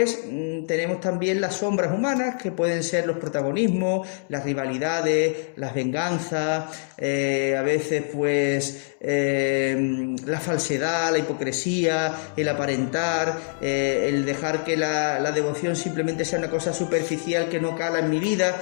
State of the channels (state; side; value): silent; right; 62 dB below the other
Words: tenemos también las sombras humanas, que pueden ser los protagonismos, las rivalidades, las venganzas, a veces pues la falsedad, la hipocresía, el aparentar, el dejar que la devoción simplemente sea una cosa superficial que no cala en mi vida.